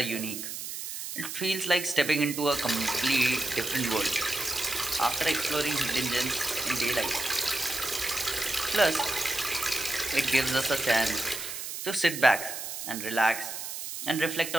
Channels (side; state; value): right; noise; hiss, 7 dB below the sound